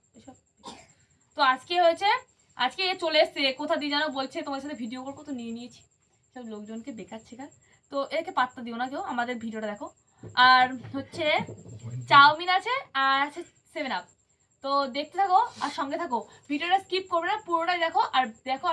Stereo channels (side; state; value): both; identical; correlation 1.00